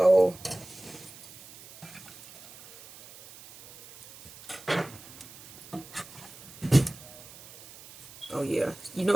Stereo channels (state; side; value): noise; right; hiss, 18 dB below the sound